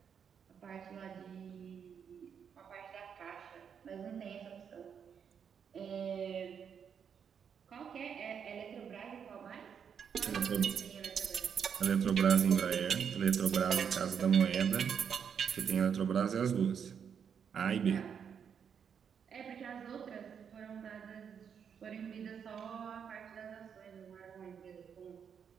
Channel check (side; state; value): left; quieter; 7.4 dB